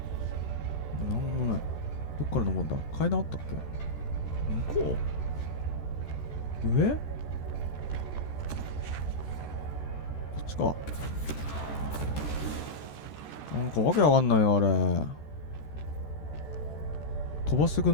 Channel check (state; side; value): late; right; 14 ms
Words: んもない。どっから登るんだ？階段あったっけ？向こう？上？こっちか。なんかわけわかんないよ、あれ。飛ばしてく